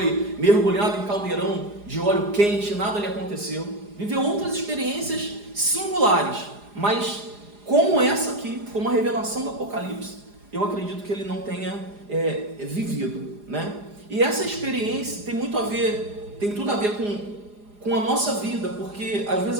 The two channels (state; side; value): late; left; 4.9 ms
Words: mergulhado em caldeirão de óleo quente, nada lhe aconteceu, viveu outras experiências singulares, mas como essa aqui, como a revelação do Apocalipse, eu acredito que ele não tenha vivido, E essa experiência tem tudo a ver com a nossa vida, porque às vezes